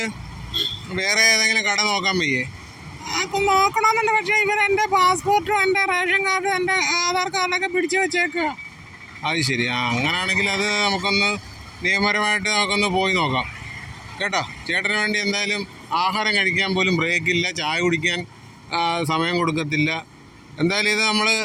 വേറെ ഏതെങ്കിലും കട നോക്കാൻ വയ്യേ? അപ്പം നോക്കണമെന്നുണ്ട്, പക്ഷേ ഇവരെൻ്റെ പാസ്പോർട്ടും എൻ്റെ റേഷൻ കാർഡും എൻ്റെ ആധാർ കാർഡൊക്കെ പിടിച്ചു വെച്ചേക്കുക. അത് ശരി. അങ്ങനെയാണെങ്കിൽ അത് നമുക്കൊന്ന് നിയമപരമായിട്ട് നമുക്കൊന്ന് പോയി നോക്കാം കേട്ടോ. ചേട്ടന് വേണ്ടി എന്തായാലും ആഹാരം കഴിക്കാൻ പോലും ബ്രേക്കില്ല, ചായ കുടിക്കാൻ സമയം കൊടുക്കത്തില്ല. എന്തായാലും ഇത് നമ്മൾ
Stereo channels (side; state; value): both; identical; correlation 1.00